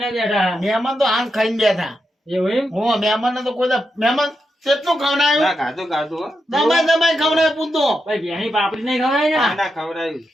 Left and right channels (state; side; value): normal; both; correlation 0.86